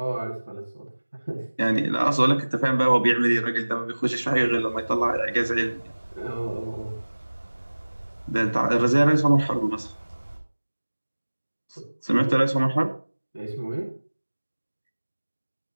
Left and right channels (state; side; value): inverted; both; correlation -1.00